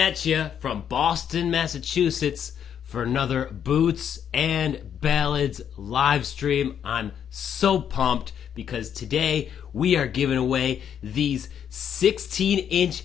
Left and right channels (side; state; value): right; quieter; 8.7 dB